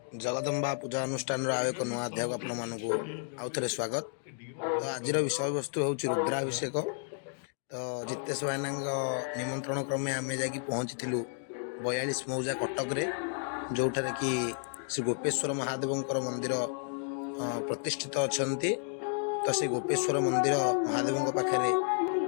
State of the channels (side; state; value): right; silent; 56 dB below the other